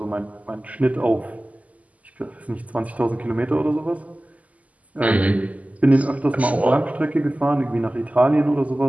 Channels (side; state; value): left; late; 0.073 ms